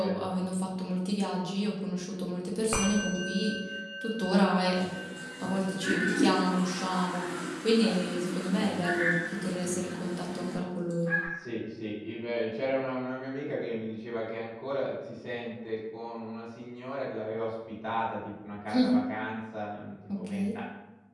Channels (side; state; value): both; identical; correlation 1.00